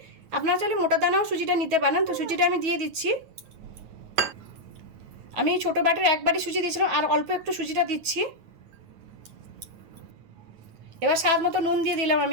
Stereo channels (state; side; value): late; left; 9.4 ms